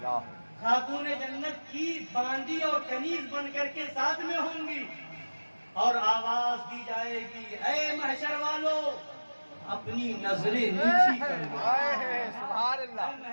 خاتون جنت کی باندی اور کنیز بن کر کے ساتھ میں ہوں گی اور آواز دی جائے گی، اے محشر والو اپنی نظریں نیچی کر لو. سبحان اللہ.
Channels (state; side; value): inverted; both; correlation -1.00